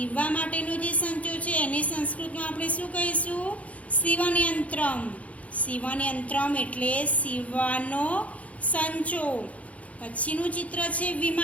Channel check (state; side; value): late; right; 0.066 ms